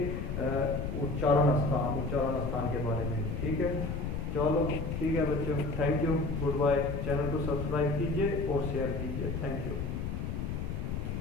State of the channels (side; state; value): left; noise; rumble, 3 dB below the sound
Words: उच्चारण स्थान के बारे में। ठीक है, चलो ठीक है बच्चों, thank you, good bye. Channel को सब्सक्राइब कीजिए और शेयर कीजिए, थैंक यू।